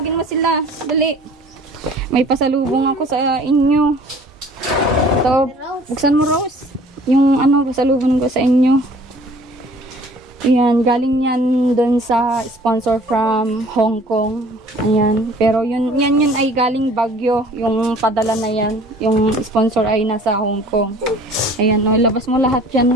mo sila. Dali. May pasalubong ako sa inyo. Ito, buksan mo, Rose. Yung pasalubong ko sa inyo. Ayan, galing yan doon sa sponsor from Hong Kong. Ayan. Pero yun ay galing Baguio. Yung padala na yan. Yung sponsor ay nasa Hong Kong. Ayan, labas mo lahat yan,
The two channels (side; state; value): both; normal; correlation 0.51